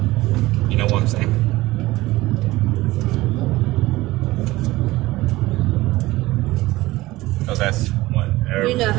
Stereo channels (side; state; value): left; quieter; 18.5 dB